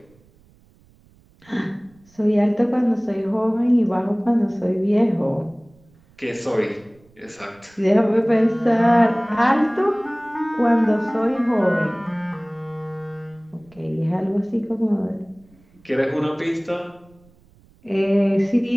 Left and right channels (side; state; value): right; noise; rumble, 30 dB below the sound